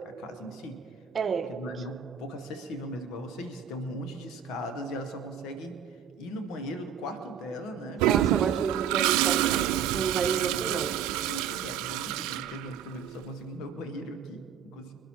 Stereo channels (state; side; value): quieter; left; 8.0 dB